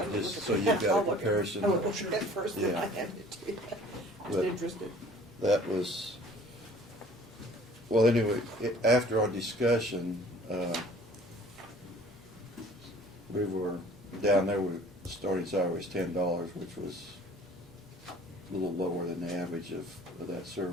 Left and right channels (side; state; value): both; normal; correlation 0.51